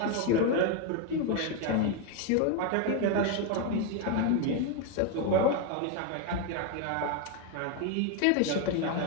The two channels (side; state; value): both; different; correlation 0.02